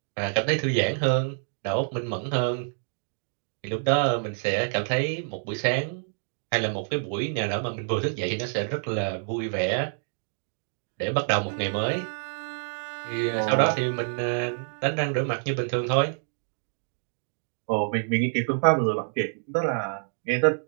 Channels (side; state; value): left; silent; digital silence